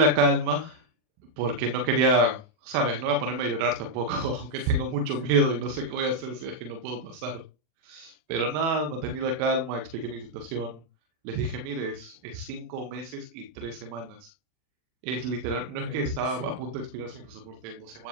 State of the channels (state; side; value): late; left; 40 ms